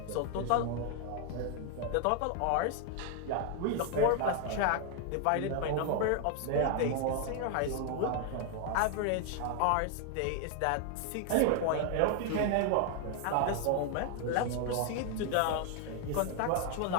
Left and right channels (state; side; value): different; both; correlation 0.00